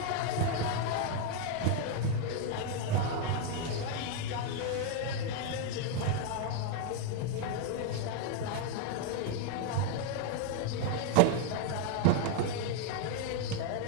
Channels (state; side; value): different; both; correlation 0.00